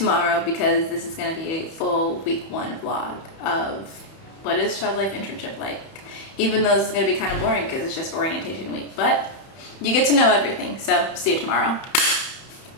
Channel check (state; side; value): late; right; 31 ms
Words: because this is going to be a full week 1 vlog of what is child life internship like, even though this is going to be kind of boring because it's just orientation week, but you get to know everything. So see you tomorrow.